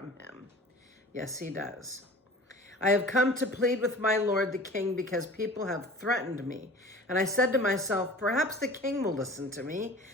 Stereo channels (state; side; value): normal; both; correlation 0.42